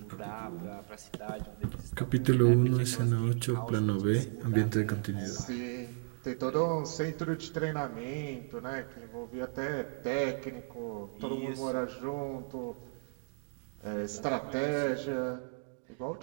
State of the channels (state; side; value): silent; left; 55 dB below the other